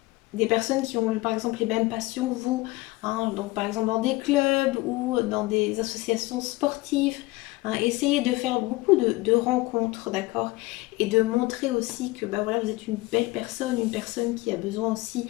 des personnes qui ont par exemple les mêmes passions que vous, hein, donc par exemple dans des clubs ou dans des associations sportives, hein. Essayez de faire beaucoup de rencontres, d'accord? Et de montrer aussi que bah, voilà, vous êtes une belle personne, une personne qui a besoin aussi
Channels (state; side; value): quieter; right; 21.2 dB